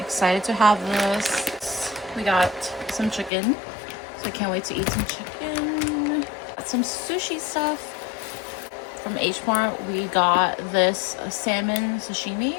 to have this. We got some chicken. So I can't wait to eat some chicken. Got some sushi stuff. From H Mart, we got this salmon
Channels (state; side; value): drops out; right; at 3.3 s